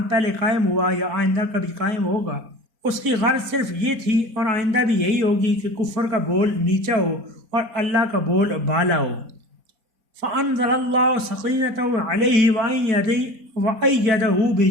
پہلے قائم ہوا یا آئندہ کبھی قائم ہوگا، اس کی غرض صرف یہ تھی اور آئندہ بھی یہی ہوگی کہ کفر کا بول نیچا ہو اور اللہ کا بول بالا ہو۔ فَأَنزَلَ اللَّهُ سَقِينَتَهُ عَلَيْهِ وَأَيَّدَهُ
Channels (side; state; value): left; late; 4.3 ms